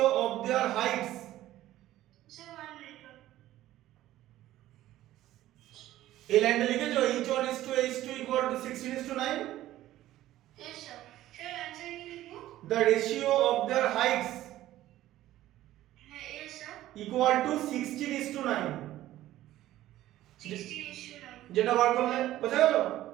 of there Heights sir 1 minute এই লাইনটা লিখেছো h1 is to h2 equal to 16 is to 9 yes sir sir answer কি লিখবো the ratio of their heights হ্যাঁ yes sir equal to 16 is to 9 16:9 যেটা বার করলে বোঝা গেল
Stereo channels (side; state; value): left; quieter; 14.5 dB